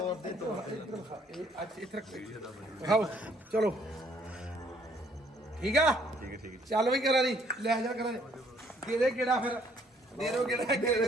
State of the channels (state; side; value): normal; both; correlation 0.64